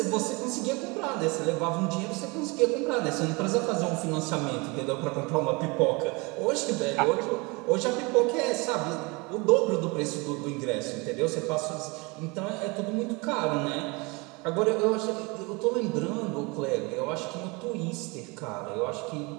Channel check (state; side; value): quieter; left; 27.3 dB